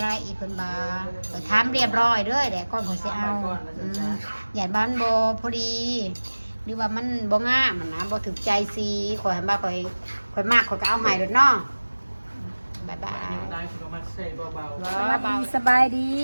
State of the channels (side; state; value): both; inverted; correlation -1.00